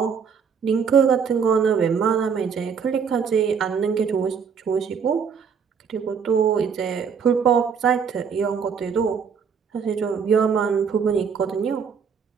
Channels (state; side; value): quieter; left; 6.5 dB